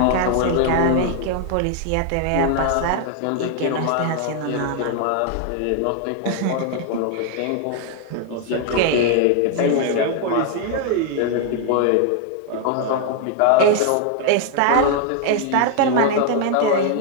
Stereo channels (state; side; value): different; both; correlation 0.00